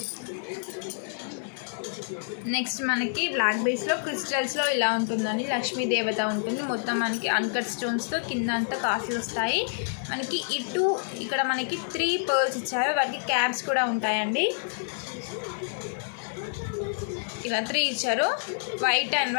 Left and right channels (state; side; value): silent; right; 59 dB below the other